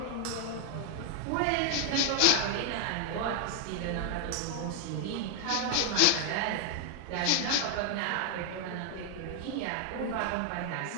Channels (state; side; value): different; both; correlation 0.00